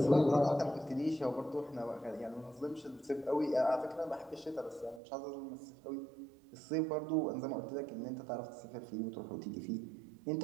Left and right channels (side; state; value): left; drops out; at 5.0 s